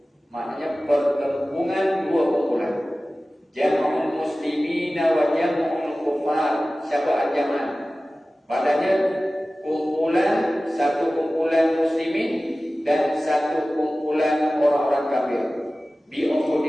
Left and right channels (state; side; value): normal; both; correlation 0.96